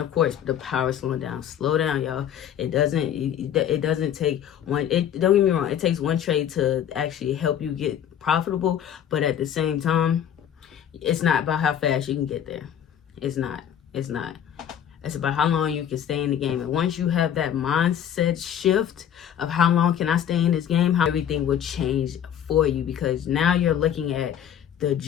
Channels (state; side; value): quieter; right; 9.5 dB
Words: of course, the power of slowing down. Slow down, y'all. It doesn't take one. Don't get me wrong. It takes one trade to actually help you get profitable. But at the same time, it's not about how fast you can get there. It's not. It's about how long you can stay in the game. And once you have that mindset shift of how long can I stay in this game, how everything will change for you, because now you're looking at the